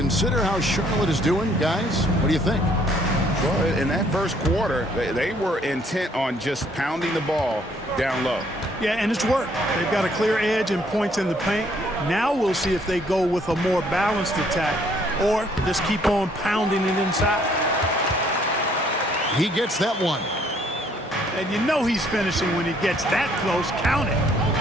how Charlotte is doing, guys, what do you think? Well, in that first quarter, they were intent on just pounding the ball down low. Yeah, and it's worked. They've got a clear edge and points in the paint. Now we'll see if they go with a more balanced attack or just keep on pounding it inside. He gets that one. And you know he's finishing when he gets that close. Count it.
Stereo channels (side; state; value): both; normal; correlation 0.64